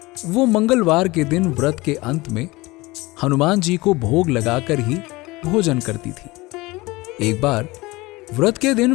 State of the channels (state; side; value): quieter; right; 21.6 dB